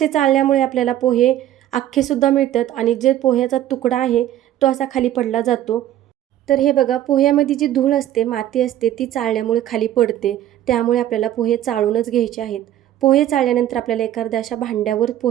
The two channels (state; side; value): quieter; left; 12.4 dB